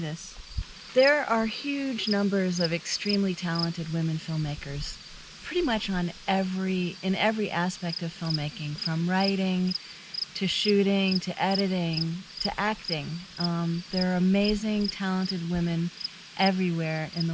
There are huge numbers of extremely talented women filmmakers, pretty much in every aspect of filmmaking, from writing to shooting, to editing, to acting. There are amazing, talented women everywhere in the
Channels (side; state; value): both; identical; correlation 1.00